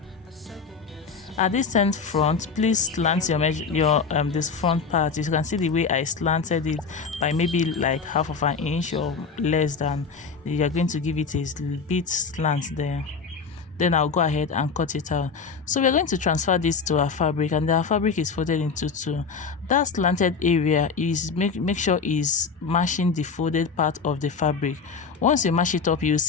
At this end front, please slant your this front part. You can see the way I slanted it by maybe like 1/2 inch or less than. You are going to give it a bit slant there. Then I'll go ahead and cut it out. So we're going to transfer this to our fabric, and our fabric is folded into 2. That slanted area is make sure is matching the folded part of the fabric. Once you mash it up, you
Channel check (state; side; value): quieter; right; 5.2 dB